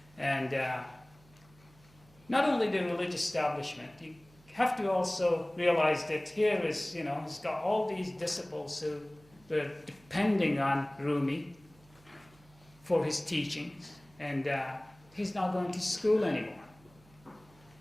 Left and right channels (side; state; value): right; noise; hum, 27 dB below the sound